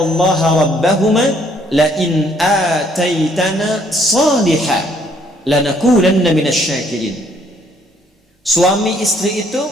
rabbahuma la in ataitana salihah lanakunanna minasyakirin. Suami istri itu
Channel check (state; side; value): normal; both; correlation 0.65